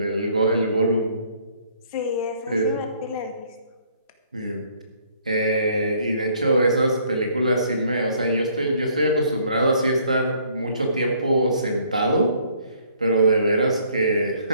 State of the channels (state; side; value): inverted; both; correlation -0.62